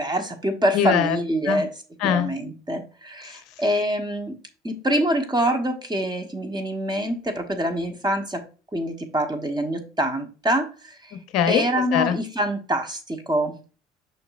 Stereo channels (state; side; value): normal; both; correlation 0.53